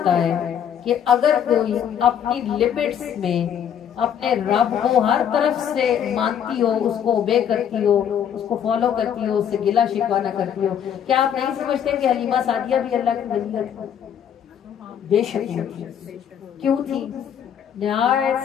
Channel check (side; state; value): right; quieter; 8.9 dB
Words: ہے کہ اگر کوئی اپنی لمٹس میں اپنے رب کو ہر طرف سے مانتی ہو، اس کو اوبے کرتی ہو، اس کو فالو کرتی ہو، اس سے گلہ شکوہ نہ کرتی ہو۔ کیا آپ نہیں سمجھتے کہ حلیمہ سعدیہ بھی اللہ کی ولی تھی؟ بے شک تھی۔ کیوں تھی؟